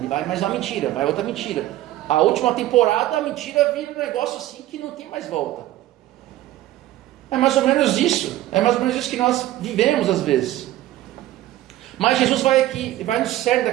vai mais uma mentira, vai outra mentira. A última temporada, a mentira vira um negócio assim que não tem mais volta. É mais ou menos isso. É mais ou menos isso que nós vivemos às vezes. Mas Jesus vai aqui, vai no cerne da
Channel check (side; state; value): left; quieter; 14.8 dB